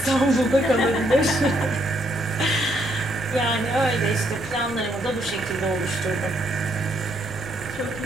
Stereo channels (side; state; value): left; noise; rumble, 18 dB below the sound